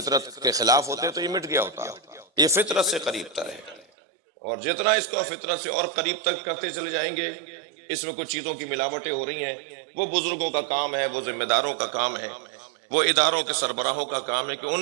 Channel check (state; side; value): drops out; left; at 3.9 s